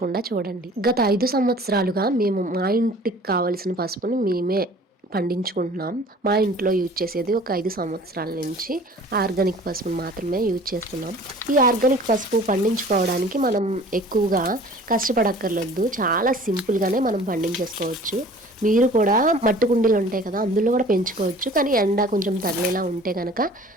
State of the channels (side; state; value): both; normal; correlation 0.47